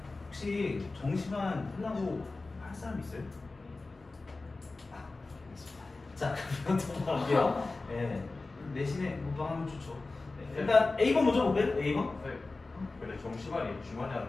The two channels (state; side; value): quieter; right; 3.5 dB